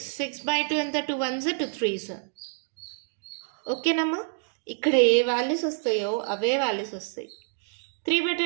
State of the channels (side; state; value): left; silent; digital silence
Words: 6/2 ఎంత? 2 1s 2 3s. ఓకేనమ్మా? ఇక్కడ ఏ వాల్యూస్ వస్తాయో అవే వాల్యూస్ వస్తాయి. 3